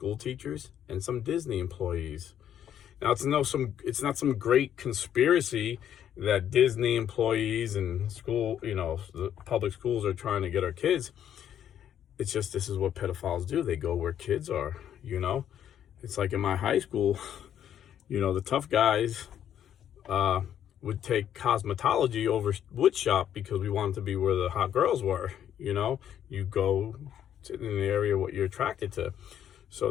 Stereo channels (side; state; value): right; quieter; 10.0 dB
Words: teachers and some Disney employees. Now, it's not some great conspiracy that Disney employees and school, the public schools are trying to get our kids. It's just, this is what pedophiles do. They go where kids are, It's like in my high school, the tough guys would take cosmetology over wood shop because we wanted to be where the hot girls were, You go to in the area what you're attracted to. So